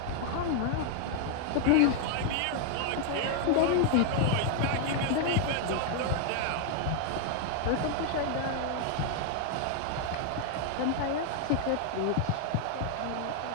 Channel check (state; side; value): different; both; correlation 0.00